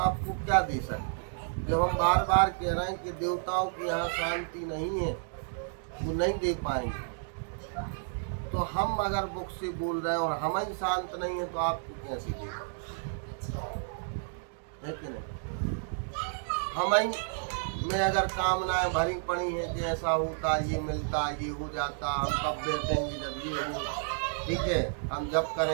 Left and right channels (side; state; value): left; silent; digital silence